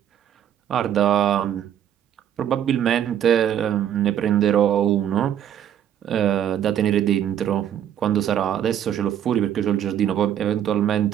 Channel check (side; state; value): left; quieter; 10.1 dB